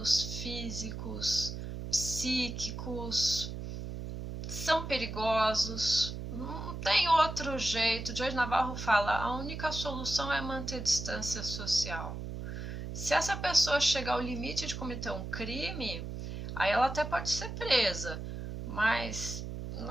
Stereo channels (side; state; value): right; noise; hum, 7 dB below the sound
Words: físicos, psíquicos, são perigosos, não tem outro jeito. Jorge Navarro fala, a única solução é manter distância social. Se essa pessoa chegar ao limite de cometer um crime, Aí ela até pode ser presa, mas